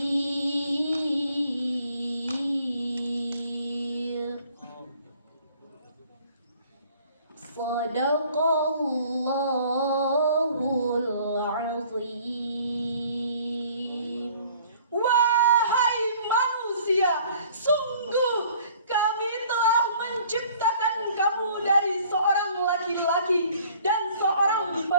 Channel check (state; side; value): inverted; both; correlation -0.55